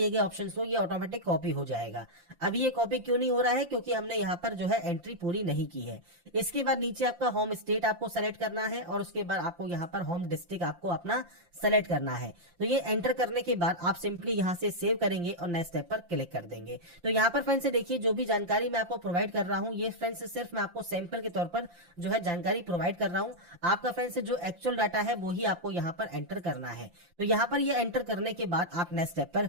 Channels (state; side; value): late; left; 5.8 ms